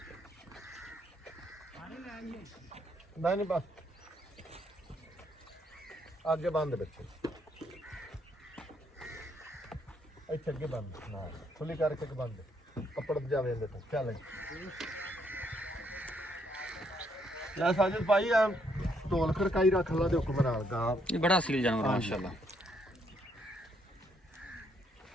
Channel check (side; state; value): both; normal; correlation 0.72